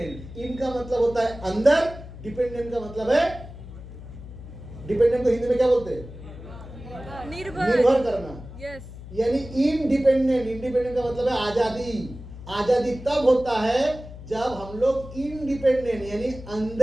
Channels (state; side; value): noise; left; hum, 14 dB below the sound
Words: इन का मतलब होता है अंदर, डिपेंडेंट का मतलब है, डिपेंडेंट को हिंदी में क्या बोलते हैं? निर्भर करना। यस। यानी इनडिपेंडेंट, इंडिपेंडेंट का मतलब है आजादी। आजादी तब होता है जब हम लोग इनडिपेंडेंट यानी